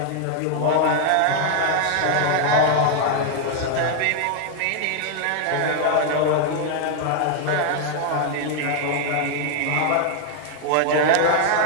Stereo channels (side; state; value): both; different; correlation 0.00